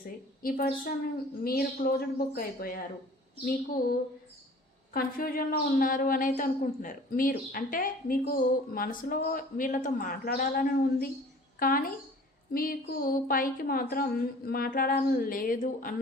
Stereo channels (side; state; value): both; normal; correlation 0.48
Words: ఈ పర్సన్ మీరు క్లోజ్డ్ బుక్ అయిపోయారు, మీకు కన్ఫ్యూజన్లో ఉన్నారు అని అయితే అనుకుంటున్నారు. మీరు అంటే మీకు మనసులో వీళ్ళతో మాట్లాడాలని ఉంది, కానీ మీకు పైకి మాత్రం మాట్లాడాలని లేదు